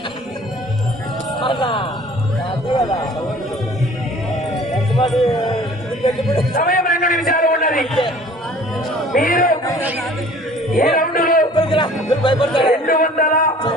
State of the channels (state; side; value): normal; both; correlation 0.50